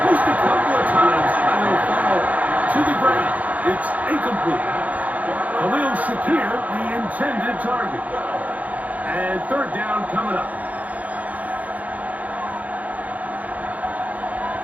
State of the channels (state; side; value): late; left; 0.073 ms